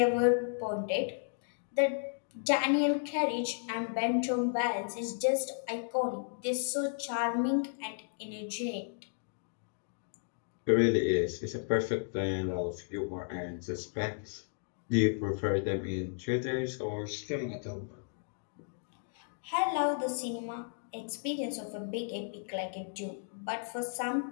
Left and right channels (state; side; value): silent; right; digital silence